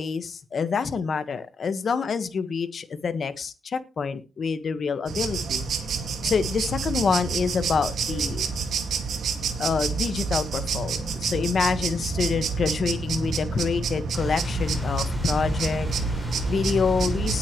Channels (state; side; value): normal; both; correlation 0.78